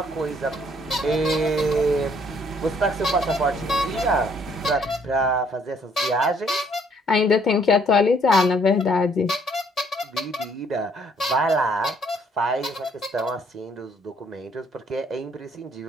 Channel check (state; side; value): normal; both; correlation 0.65